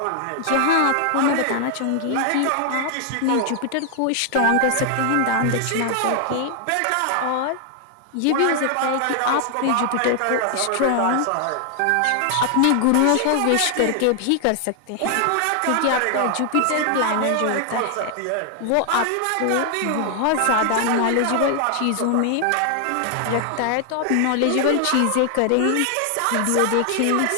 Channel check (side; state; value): both; different; correlation 0.00